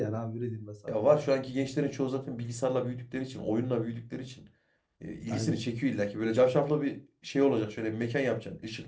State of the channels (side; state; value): both; identical; correlation 1.00